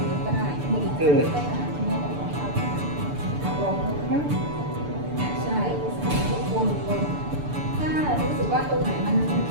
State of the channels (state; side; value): late; left; 6.9 ms